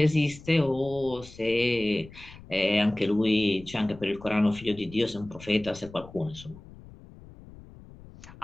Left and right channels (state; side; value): noise; left; rumble, 19 dB below the sound